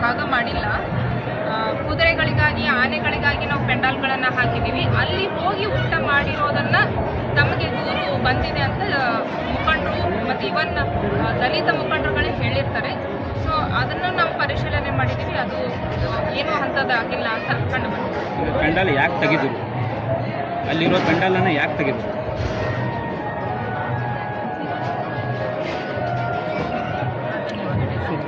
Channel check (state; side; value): identical; both; correlation 1.00